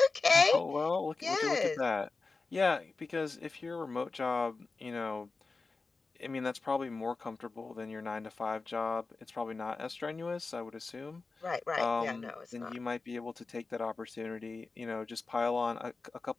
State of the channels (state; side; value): quieter; right; 4.0 dB